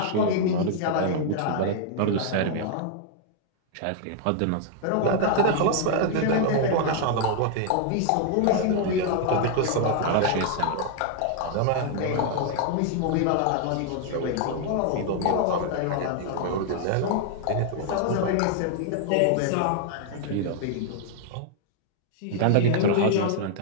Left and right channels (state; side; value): different; both; correlation 0.00